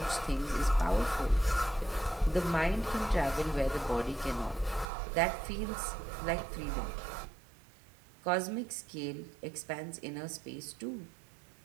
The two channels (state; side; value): drops out; left; at 4.9 s